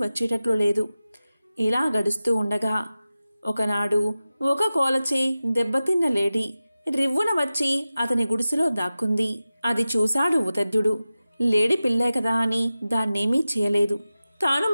లేదు. ఇలా గడుస్తూ ఉండగా ఒకనాడు ఒక కోలచే దెబ్బతిన్న లేడీ రివ్వున వచ్చి అతని గుడిసెలో దాక్కుంది. అది చూశాడు ఉతద్యుడు. లేడి పిల్లే కదా అని దాన్నేమీ చేయలేదు. తాను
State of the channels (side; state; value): both; inverted; correlation -0.94